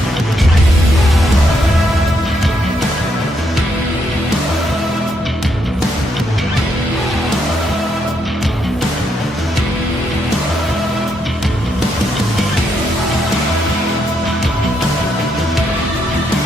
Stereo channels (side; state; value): both; normal; correlation 0.77